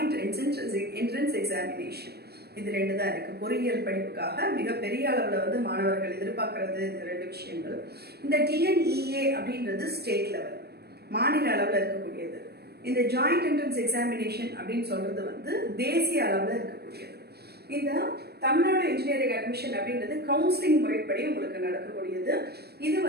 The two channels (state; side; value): late; left; 0.47 ms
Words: என்ட்ரன்ஸ் எக்ஸாமினேஷன். இது ரெண்டு தான் இருக்கு. பொறியியல் படிப்புக்காக மிகப்பெரிய அளவில் வந்து மாணவர்கள் எதிர்பார்க்கறது இந்த ரெண்டு விஷயங்கள். இந்த டிஎன்இஏ அப்படின்றது ஸ்டேட் லெவல், மாநில அளவில் இருக்கக்கூடியது. இந்த ஜாயிண்ட் என்ட்ரன்ஸ் எக்ஸாமினேஷன் அப்படின்னு சொல்றது வந்து தேசிய அளவில் இருக்கக்கூடியது. இந்த தமிழ்நாடு இன்ஜினியரிங் அட்மிஷன் அப்படின்றது கவுன்சிலிங் முறைப்படி உங்களுக்கு நடக்கக்கூடியது. இது